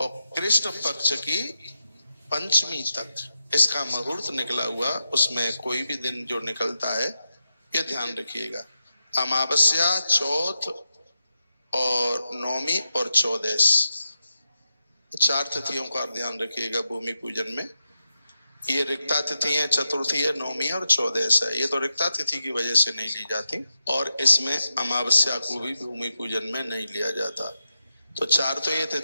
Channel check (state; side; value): inverted; both; correlation -0.87